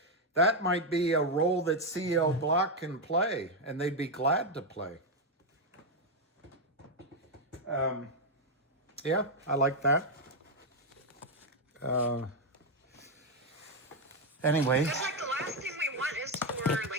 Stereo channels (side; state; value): both; normal; correlation 0.03